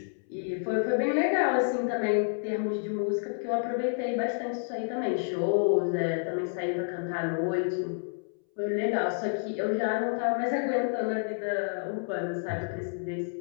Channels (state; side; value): silent; right; 58 dB below the other